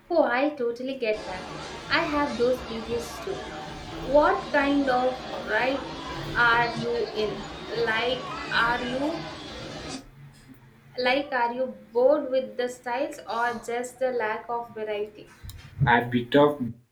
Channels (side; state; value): both; identical; correlation 1.00